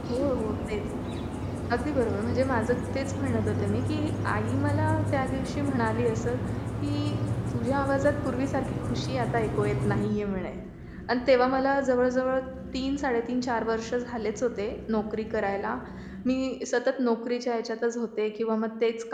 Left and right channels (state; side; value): identical; both; correlation 1.00